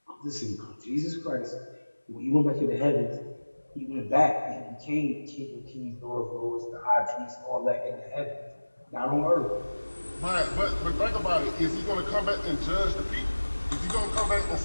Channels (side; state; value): both; inverted; correlation -1.00